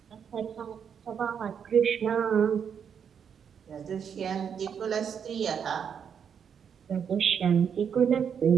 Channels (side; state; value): left; quieter; 7.5 dB